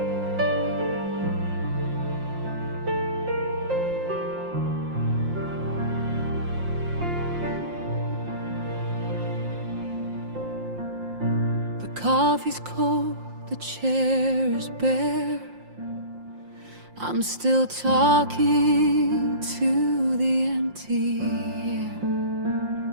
The coffee's cold, the chair is bare. I'm still talking to the empty air,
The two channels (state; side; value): late; left; 5.7 ms